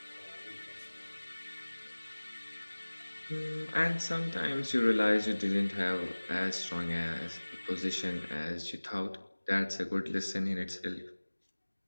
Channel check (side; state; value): both; inverted; correlation -1.00